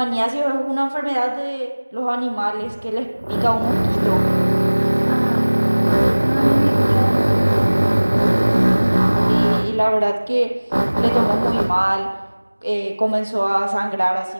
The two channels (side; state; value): both; inverted; correlation -1.00